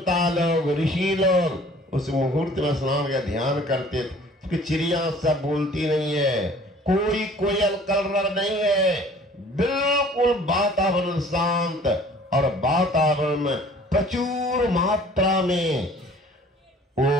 लोग, ऋषि लोग उस मुहूर्त में स्नान का ध्यान करते थे, क्योंकि चिड़िया सब बोलती नहीं है, कोई कोयल कलरव नहीं है, बिल्कुल वातावरण शांत, और वातावरण में प्रचुर मात्रा में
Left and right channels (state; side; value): normal; both; correlation 0.51